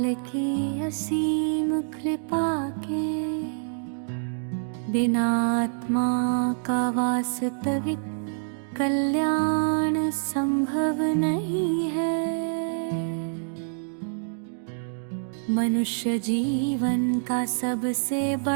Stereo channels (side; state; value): left; silent; digital silence